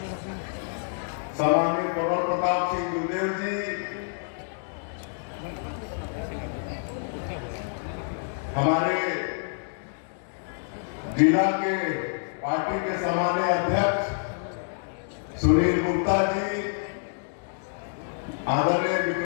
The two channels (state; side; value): silent; right; digital silence